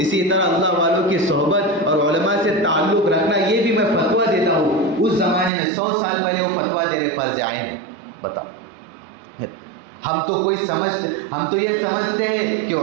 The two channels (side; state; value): left; drops out; at 5.5 s